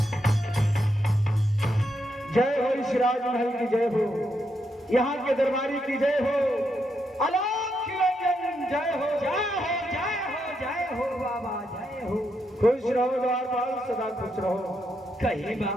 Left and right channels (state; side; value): normal; both; correlation 0.81